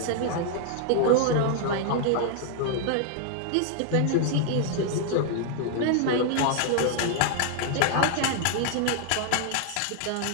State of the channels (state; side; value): different; both; correlation 0.00